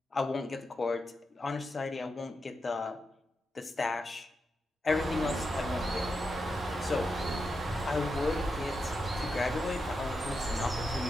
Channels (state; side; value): normal; both; correlation 0.86